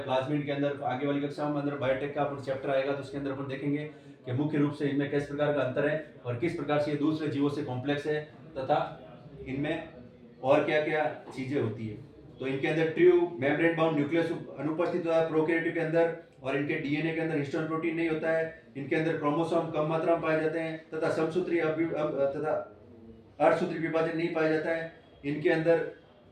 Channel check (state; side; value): identical; both; correlation 1.00